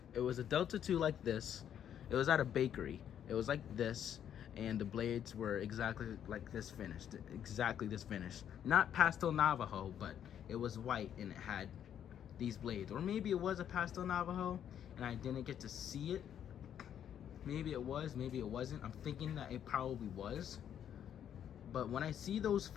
It was a Delta 2 like this. It was at a bakery. It was like this, and the blades were exactly like this finished. Exactly this finish. Not Pastel Navajo, but it was white and it had these blades. Or maybe it was a Pastel Navajo and I didn't get to see it. Maybe it was, maybe it wasn't. I'm thinking that it probably was. But when I see those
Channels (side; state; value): right; quieter; 9.5 dB